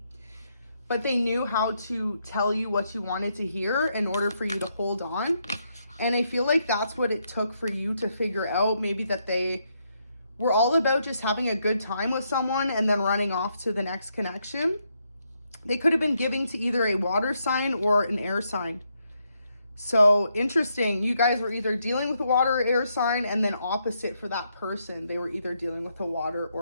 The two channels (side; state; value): both; inverted; correlation -0.78